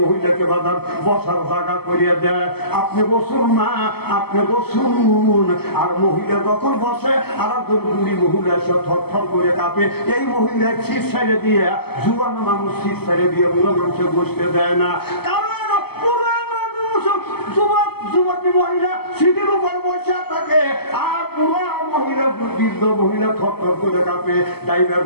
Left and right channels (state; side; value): late; right; 0.96 ms